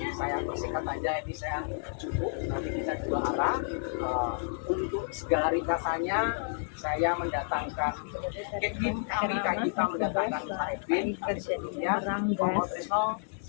saya persingkat aja, ini saya cukup, nanti kita dua arah. Untuk segala ringkasannya saya mendatangkan tim kami, kita mendatangkan Pak Edwin, tapi sebelumnya Pak Tresno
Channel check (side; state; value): right; silent; digital silence